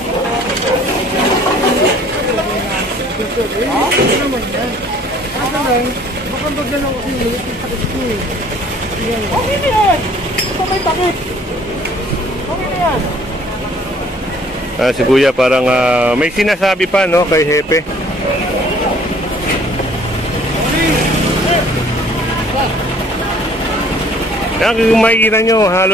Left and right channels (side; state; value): both; normal; correlation 0.56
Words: Okay na yan! Ito may takip! Okay na yan! Si Kuya parang may sinasabi pa, no, kay Hepe. Kung makikita nyo,